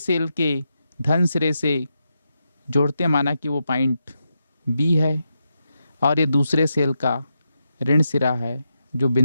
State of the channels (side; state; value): both; inverted; correlation -0.86